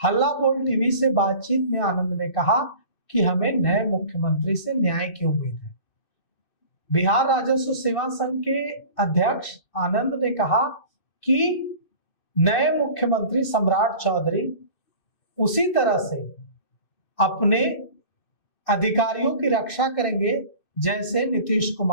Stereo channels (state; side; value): late; right; 2.6 ms